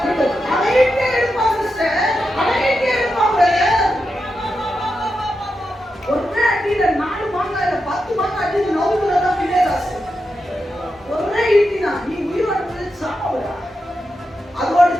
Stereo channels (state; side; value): normal; both; correlation 0.88